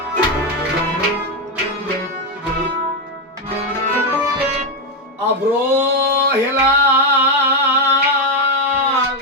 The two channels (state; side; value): normal; both; correlation 0.06